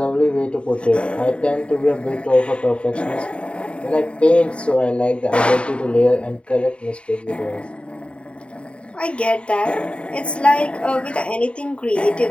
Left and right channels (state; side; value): late; right; 0.058 ms